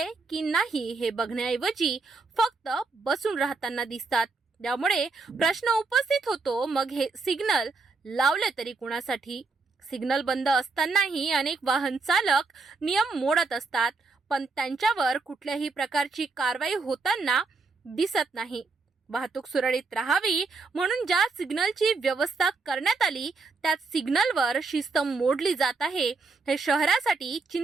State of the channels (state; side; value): quieter; left; 4.1 dB